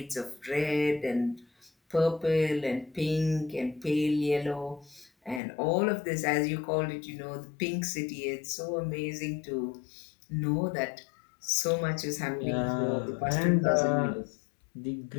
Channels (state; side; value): drops out; right; at 5.4 s